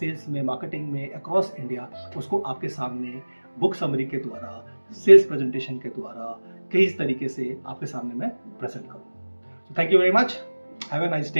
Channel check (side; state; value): both; inverted; correlation -1.00